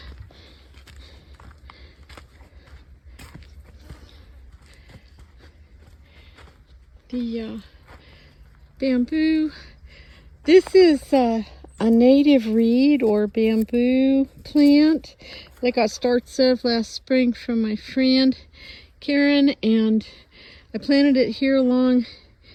The bamboo. This is a native reed or bamboo plant that I got starts of last spring from my friend Karen, and I planted it here along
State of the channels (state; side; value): identical; both; correlation 1.00